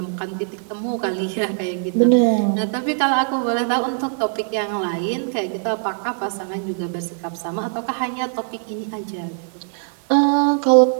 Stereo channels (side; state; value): left; silent; digital silence